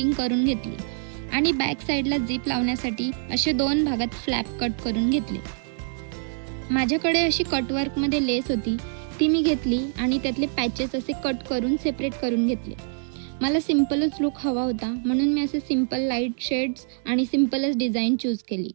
करून घेतली आणि बॅक साईडला झिप लावण्यासाठी असे 2 भागात फ्लॅप कट करून घेतले. माझ्याकडे अशी कटवर्कमध्ये लेस होती, ती मी घेतली आणि त्यातले पॅचेस असे कट करून सेपरेट करून घेतले. मला सिम्पलच लुक हवा होता, म्हणून मी असे सिम्पल लाईट शेड्स आणि सिम्पलच डिझाईन चूज केली.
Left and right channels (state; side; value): silent; left; 62 dB below the other